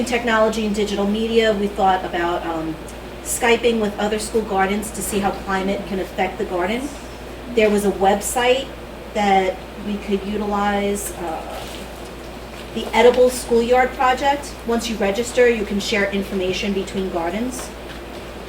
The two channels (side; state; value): both; identical; correlation 1.00